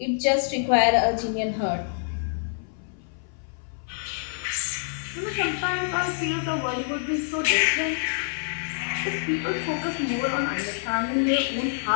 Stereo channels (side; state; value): right; silent; 57 dB below the other